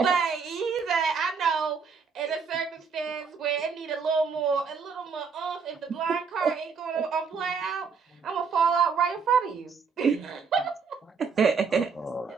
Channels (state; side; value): quieter; left; 5.6 dB